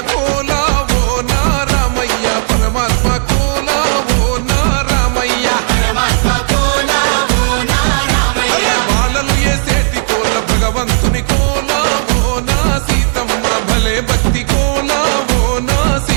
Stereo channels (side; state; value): left; silent; digital silence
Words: కోల ఓ నారామయ్య పరమాత్మ కోల ఓ నారామయ్య అరే బాలలు ఏ సేటి కోల భగవంతుని కోల ఓ నా సీతమ్మ భలే భక్తి కోల ఓ నా